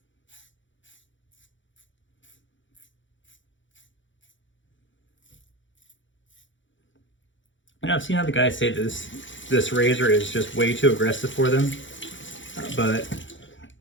And I've seen other guys say this razor is just way too aggressive for them, but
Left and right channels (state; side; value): late; right; 0.55 ms